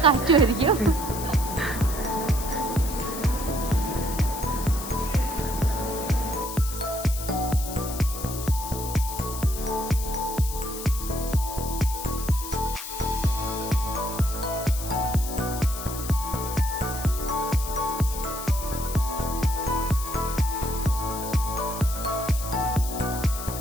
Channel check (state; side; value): noise; left; hiss, 9 dB below the sound